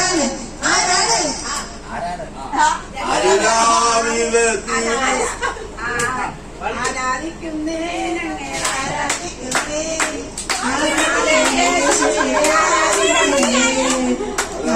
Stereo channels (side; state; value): both; identical; correlation 1.00